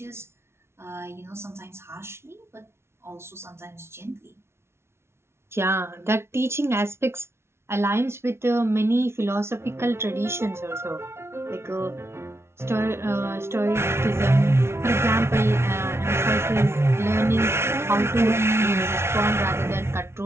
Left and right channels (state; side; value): late; left; 0.12 ms